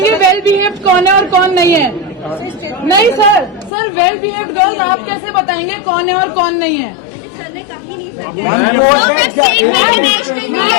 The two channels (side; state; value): right; drops out; at 3.7 s